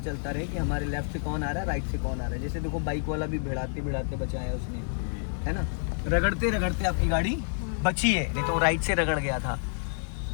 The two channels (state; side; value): silent; right; 59 dB below the other